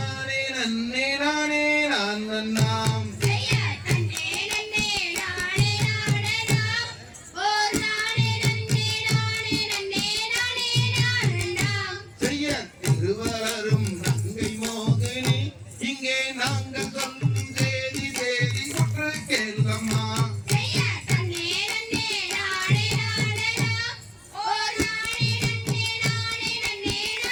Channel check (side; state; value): both; identical; correlation 1.00